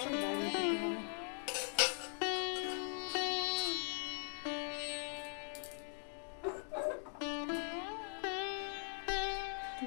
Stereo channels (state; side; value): silent; right; 50 dB below the other